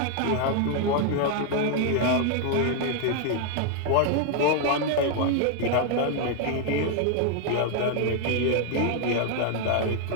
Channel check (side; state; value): both; different; correlation 0.00